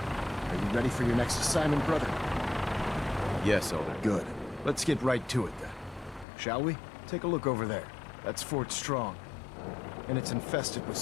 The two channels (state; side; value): drops out; right; at 6.2 s